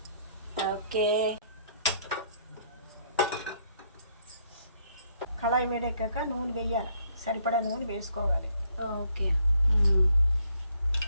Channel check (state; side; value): inverted; both; correlation -0.68